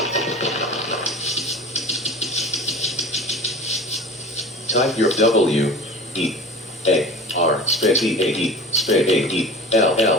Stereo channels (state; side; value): normal; both; correlation 0.37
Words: Type your W-E-A-R space E-A-E space